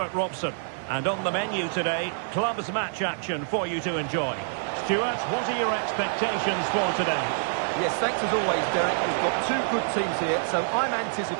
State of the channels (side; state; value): left; silent; digital silence